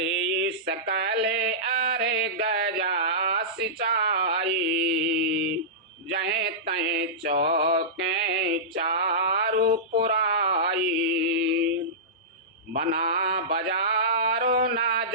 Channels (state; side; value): normal; both; correlation -0.18